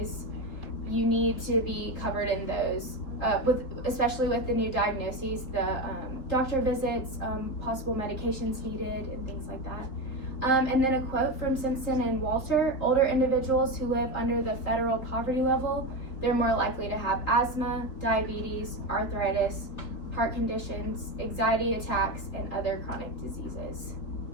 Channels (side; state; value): right; late; 3.8 ms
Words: you need to be covered in those, especially with the new diagnoses, the doctor visits, possible medications needed, and things like that. And then a quote from Simpson and Walter: older individuals who live under the federal poverty level, they're more likely to have asthma, diabetes, arthritis, heart conditions, anxiety attacks, and other chronic diseases.